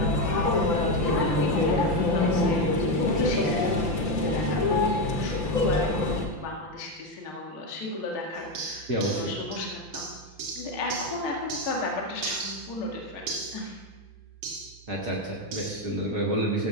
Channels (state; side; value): late; left; 5.8 ms